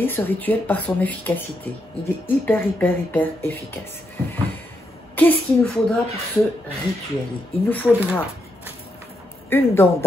ce rituel par son efficacité. Il est hyper efficace. Qu'est-ce qu'il nous faudra pour ce rituel? Il nous faudra une dent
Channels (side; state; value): both; normal; correlation 0.81